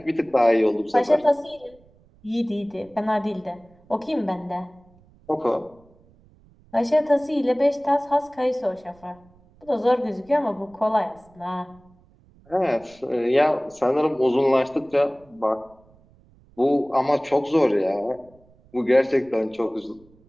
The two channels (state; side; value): noise; right; rumble, 29 dB below the sound